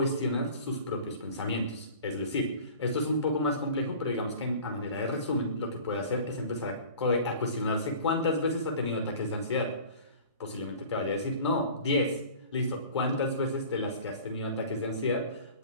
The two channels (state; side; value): inverted; both; correlation -0.43